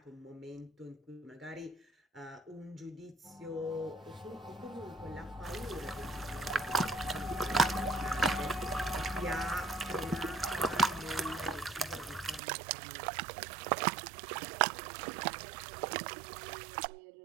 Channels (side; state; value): left; drops out; at 12.4 s